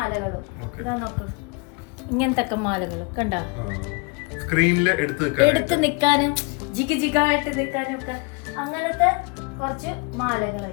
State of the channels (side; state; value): right; quieter; 30.7 dB